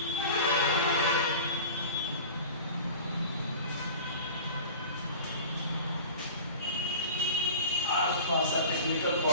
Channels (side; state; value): both; inverted; correlation -0.38